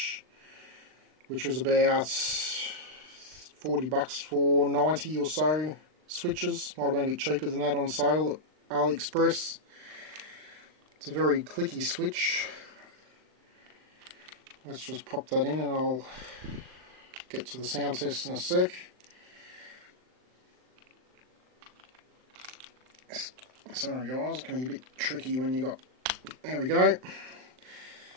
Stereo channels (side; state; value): left; late; 39 ms